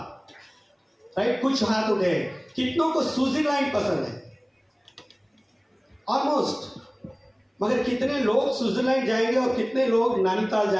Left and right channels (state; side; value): identical; both; correlation 1.00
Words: राइट? कुछ हाथ उठे। कितनों को स्विट्जरलैंड पसंद है? ऑलमोस्ट। मगर कितने लोग स्विट्जरलैंड जाएंगे और कितने लोग नैनीताल